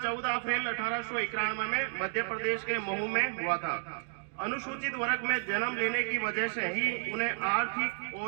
14 अप्रैल 1891 में मध्य प्रदेश के महू में हुआ था। अनुसूचित वर्ग में जन्म लेने की वजह से ही उन्हें आर्थिक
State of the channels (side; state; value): left; silent; digital silence